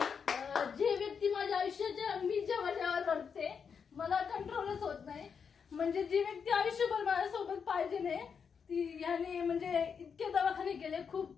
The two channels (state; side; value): quieter; right; 6.4 dB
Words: जे व्यक्ती माझ्या आयुष्याच्या मी जेव्हा रडते मला कंट्रोलच होत नाही. म्हणजे जी व्यक्ती आयुष्यभर माझ्यासोबत पाहिजे नाही ती याने म्हणजे इतके दवाखाने केले,